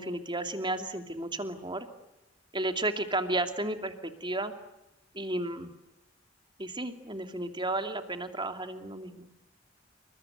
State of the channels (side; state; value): both; normal; correlation 0.28